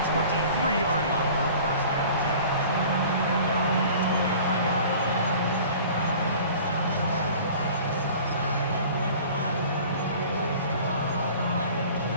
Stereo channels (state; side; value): inverted; both; correlation -0.45